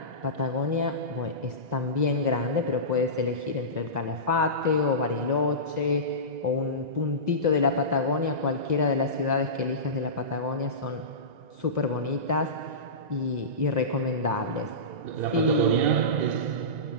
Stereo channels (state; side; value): late; left; 2.0 ms